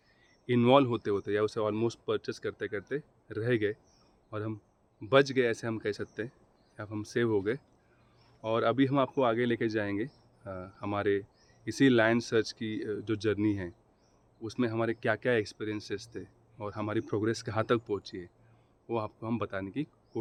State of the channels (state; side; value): identical; both; correlation 1.00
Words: इन्वॉल्व होते होते या उसे ऑलमोस्ट परचेस करते करते रह गए और हम बच गए, ऐसे हम कह सकते हैं, या हम सेव हो गए। और अभी हम आपको आगे लेके जाएंगे हमारे इसी लैंड सर्च की जो जर्नी है उसमें हमारे क्या क्या एक्सपीरियंसेस थे और हमारी प्रोग्रेस कहाँ तक पहुँची है, वो आपको हम बताने की